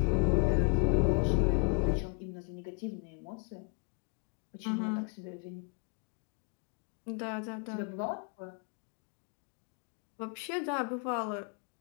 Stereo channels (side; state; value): right; quieter; 30.8 dB